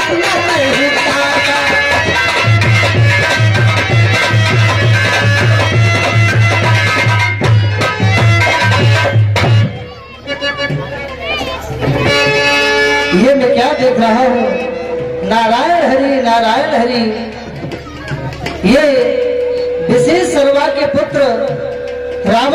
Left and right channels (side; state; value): both; identical; correlation 1.00